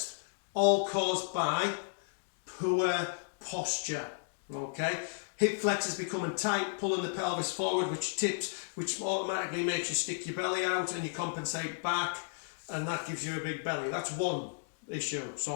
all caused by poor posture. Okay, hip flexors becoming tight, pulling the pelvis forward, which tips, which automatically makes you stick your belly out and you compensate back, and that gives you a big belly. That's one issue.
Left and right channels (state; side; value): silent; right; digital silence